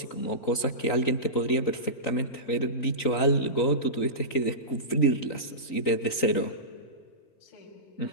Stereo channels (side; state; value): right; late; 3.9 ms